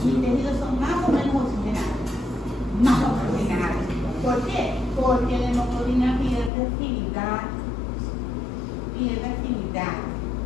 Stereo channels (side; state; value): right; drops out; at 6.5 s